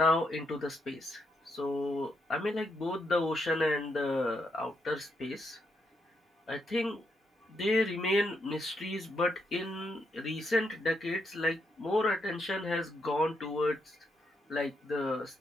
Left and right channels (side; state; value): both; normal; correlation 0.79